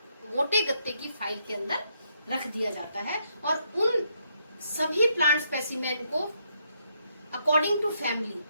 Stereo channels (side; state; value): both; inverted; correlation -0.76